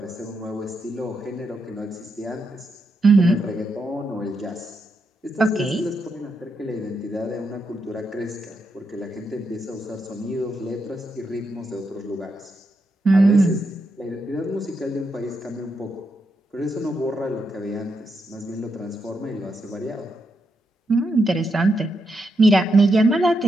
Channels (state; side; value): normal; both; correlation 0.83